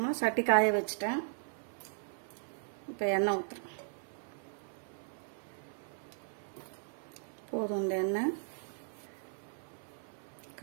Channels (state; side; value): silent; left; 53 dB below the other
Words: சட்டி காய வச்சுட்டேன். இப்போ எண்ணெய் ஊற்றுறேன். போதும் இந்த எண்ணெய்.